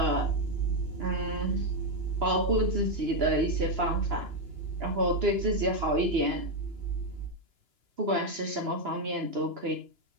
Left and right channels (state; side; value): late; left; 2.9 ms